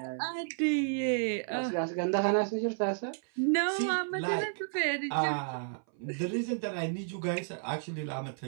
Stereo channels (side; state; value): left; silent; 57 dB below the other